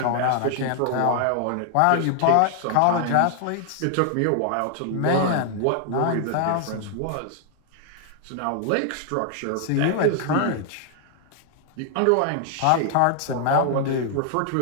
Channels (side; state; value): both; different; correlation 0.00